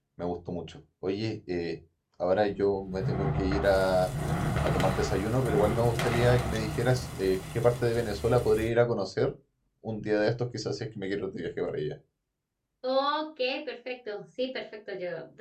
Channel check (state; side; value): identical; both; correlation 1.00